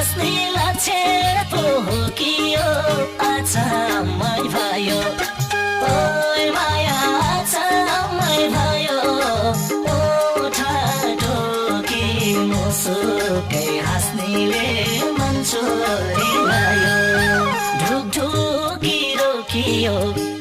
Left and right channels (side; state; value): both; identical; correlation 1.00